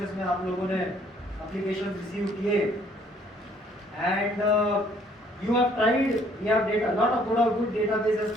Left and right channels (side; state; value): both; normal; correlation 0.62